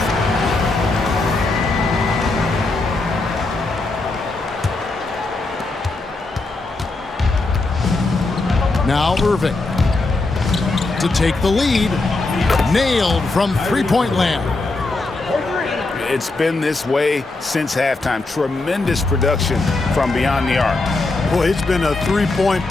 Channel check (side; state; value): right; quieter; 3.3 dB